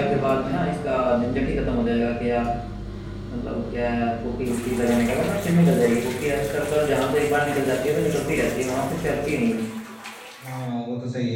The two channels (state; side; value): identical; both; correlation 1.00